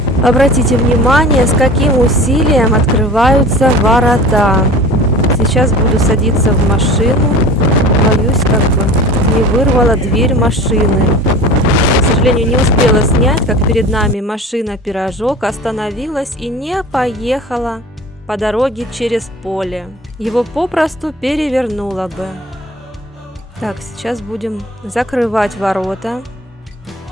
Обратите внимание, с каким усилием открываются ворота. Сейчас буду садиться в машину. Боюсь, как бы не вырвала дверь машины. К сожалению, не успела снять, как перед нами машина-пирожок остановилась и не поехала по дороге через поле. Его попросту перевернуло бы. Так, сейчас будем закрывать ворота.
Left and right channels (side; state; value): both; normal; correlation 0.39